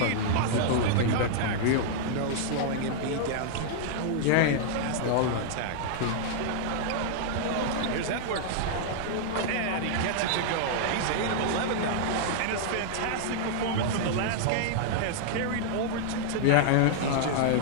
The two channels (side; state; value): both; different; correlation -0.01